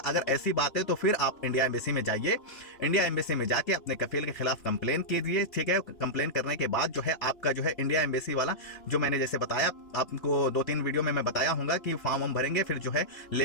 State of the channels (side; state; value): right; late; 2.9 ms